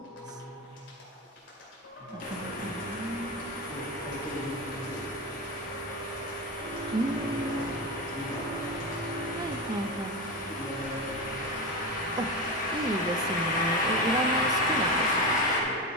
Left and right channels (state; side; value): normal; both; correlation 0.19